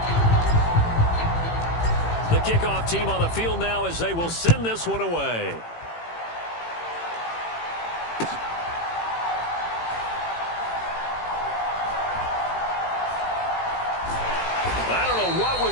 Kickoff team on the field now as they will send this one away. I don't know what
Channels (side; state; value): right; late; 18 ms